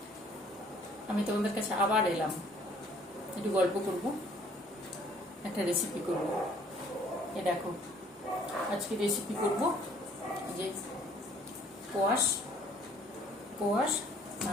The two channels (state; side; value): normal; both; correlation 0.58